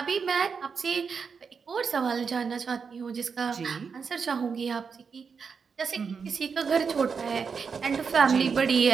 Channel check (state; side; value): quieter; left; 5.8 dB